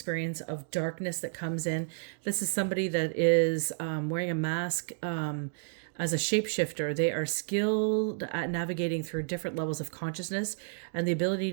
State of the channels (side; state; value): left; silent; digital silence